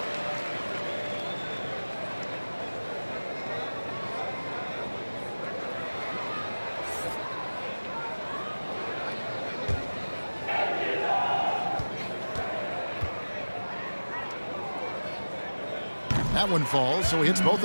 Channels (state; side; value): inverted; both; correlation -1.00